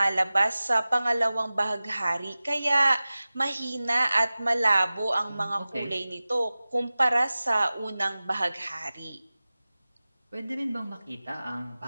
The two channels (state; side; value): inverted; both; correlation -0.97